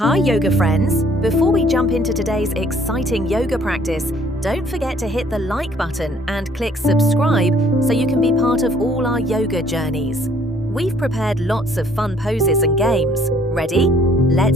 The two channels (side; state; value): both; normal; correlation 0.61